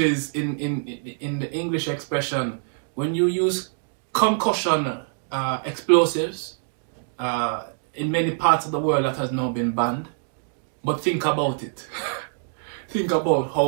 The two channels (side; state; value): left; silent; digital silence